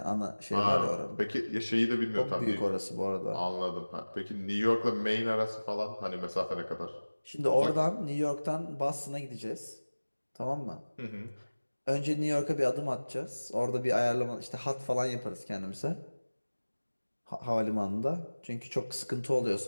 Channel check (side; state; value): both; inverted; correlation -1.00